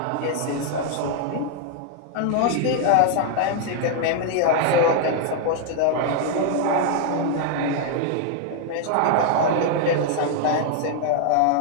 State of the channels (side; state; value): both; different; correlation 0.00